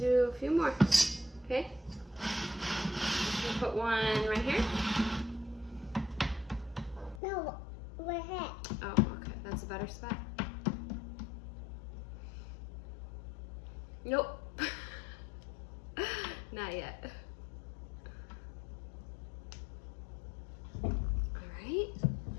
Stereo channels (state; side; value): drops out; right; at 7.2 s